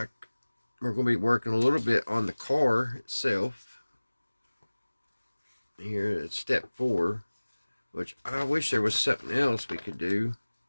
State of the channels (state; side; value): inverted; both; correlation -1.00